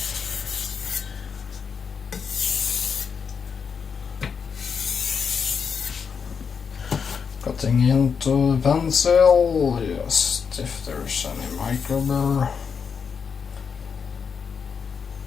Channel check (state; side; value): quieter; right; 6.3 dB